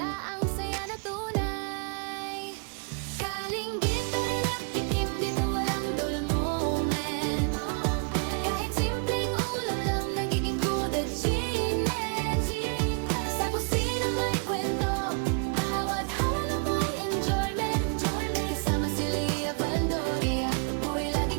ang saya na tunay. Kalinggit na rin at tikim, dito walang dull moment. Kahit simpleng ulam lang, nagiging food achievement. Sa kusina may kwento, bawat halo may enjoyment. Kasama si Lia Valdoria, buhay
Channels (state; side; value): quieter; left; 35.7 dB